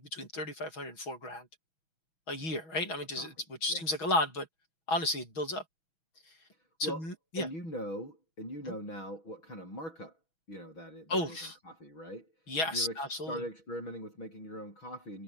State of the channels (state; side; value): late; right; 6.2 ms